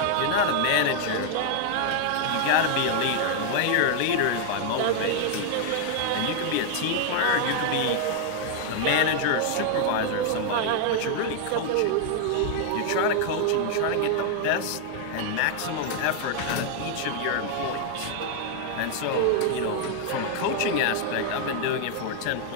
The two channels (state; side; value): different; both; correlation 0.00